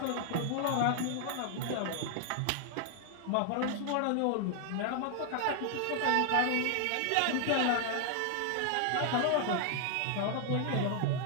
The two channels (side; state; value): both; different; correlation 0.00